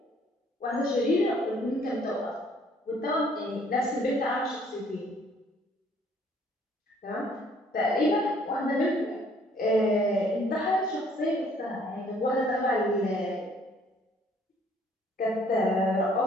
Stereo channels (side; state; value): both; normal; correlation 0.61